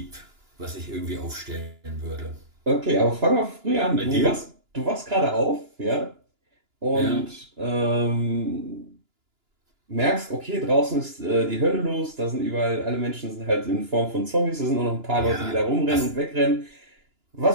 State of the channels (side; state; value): left; late; 2.9 ms